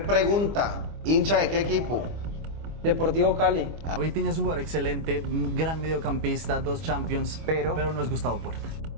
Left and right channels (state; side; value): late; left; 25 ms